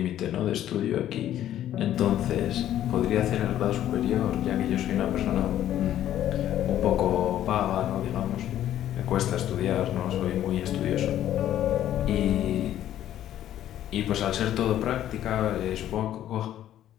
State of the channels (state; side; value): quieter; right; 11.9 dB